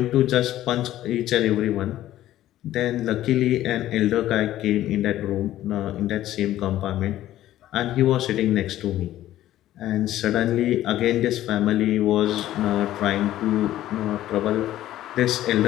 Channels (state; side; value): quieter; right; 13.6 dB